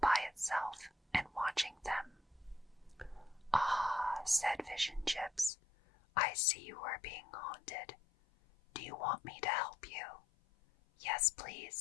by itself and watching them. "Ah," said Fish and Chips, "I see you are being haunted. Do you want me to help you?" "Yes,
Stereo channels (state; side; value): drops out; right; at 5.5 s